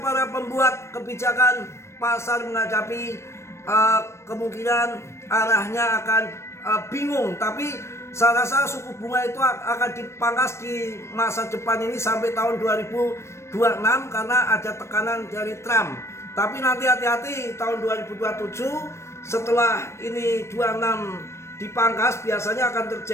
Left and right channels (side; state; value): right; late; 0.13 ms